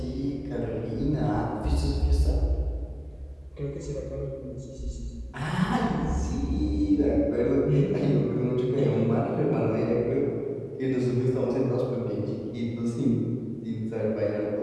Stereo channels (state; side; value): identical; both; correlation 1.00